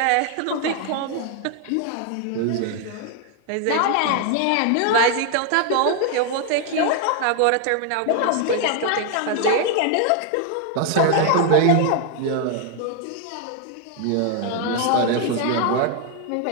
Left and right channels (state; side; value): different; both; correlation 0.00